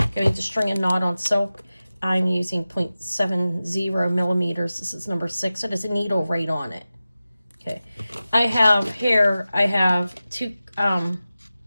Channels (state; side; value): inverted; both; correlation -0.95